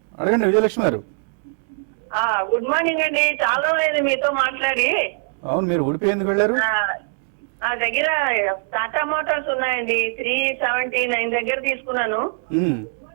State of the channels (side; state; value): left; silent; 64 dB below the other